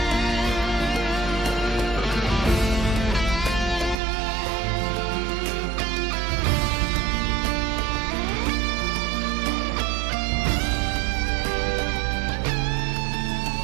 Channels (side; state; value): left; drops out; at 4.0 s